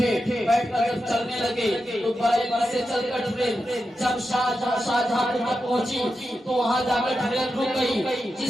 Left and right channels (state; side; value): normal; both; correlation 0.89